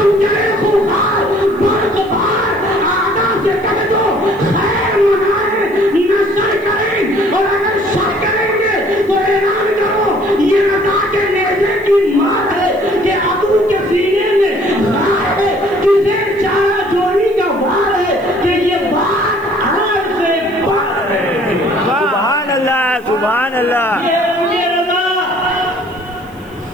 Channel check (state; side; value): noise; left; hiss, 30 dB below the sound